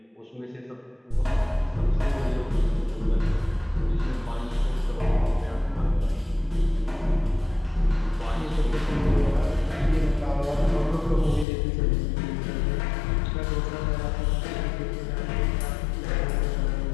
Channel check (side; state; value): right; drops out; at 11.5 s